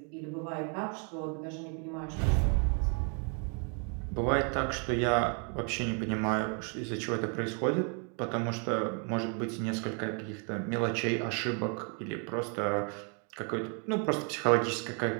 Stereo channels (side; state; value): left; quieter; 38.4 dB